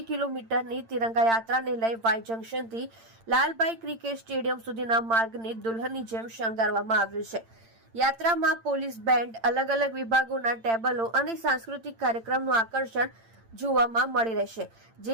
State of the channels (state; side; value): late; left; 8.8 ms